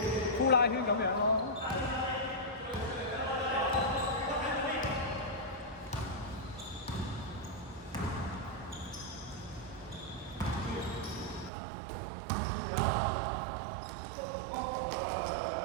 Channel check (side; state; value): left; drops out; at 11.5 s